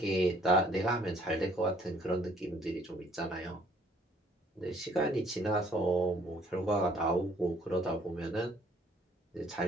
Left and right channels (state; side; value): normal; both; correlation 0.60